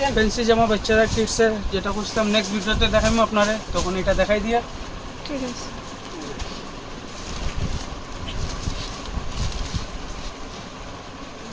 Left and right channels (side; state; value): both; identical; correlation 1.00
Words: ফ্যান্সি জামা বাচ্চারা কিডসের যেটা করছিলাম নেক্সট ভিডিওতে দেখাবো আপনারে, তখন এটা দেখাই দিয়া। ঠিক আছে।